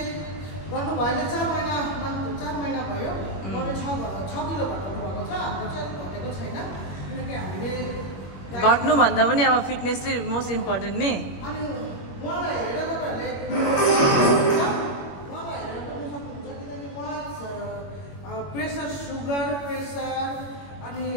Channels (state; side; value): late; right; 21 ms